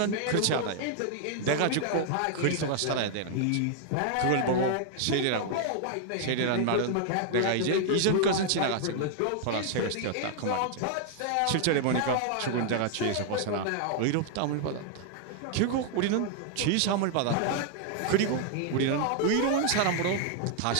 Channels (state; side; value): different; both; correlation 0.00